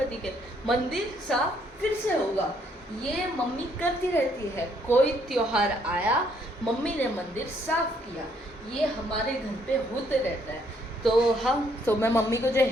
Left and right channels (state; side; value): normal; both; correlation 0.69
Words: के, मंदिर साफ फिर से होगा। ये मम्मी करती रहती है। कोई त्योहार आया, मम्मी ने मंदिर साफ किया। ये हमारे घर पे होते रहता है। तो मैं मम्मी को जो